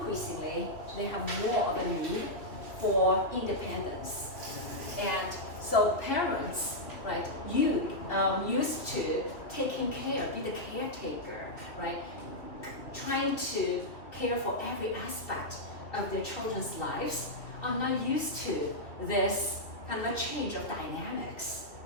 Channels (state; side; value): late; right; 2.7 ms